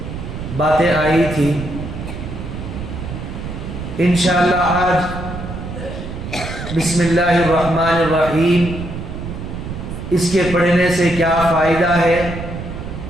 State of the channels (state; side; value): noise; right; rumble, 8 dB below the sound